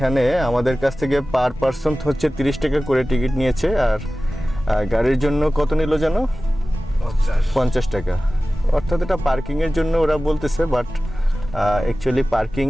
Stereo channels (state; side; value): normal; both; correlation 0.96